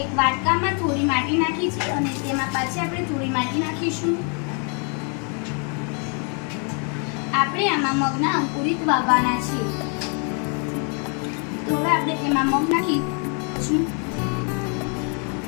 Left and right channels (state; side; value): quieter; right; 38.6 dB